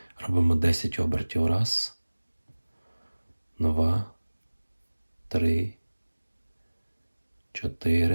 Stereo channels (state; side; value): inverted; both; correlation -1.00